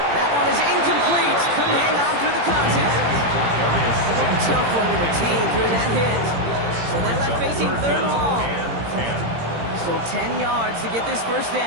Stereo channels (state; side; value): late; left; 17 ms